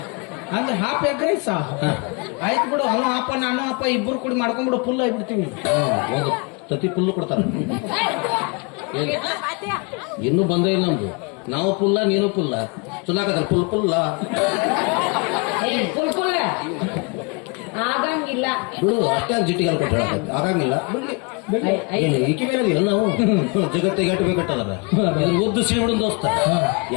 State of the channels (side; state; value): right; quieter; 31.7 dB